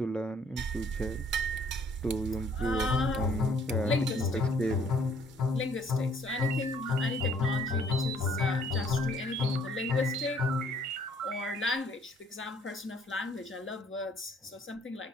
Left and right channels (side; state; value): both; normal; correlation 0.62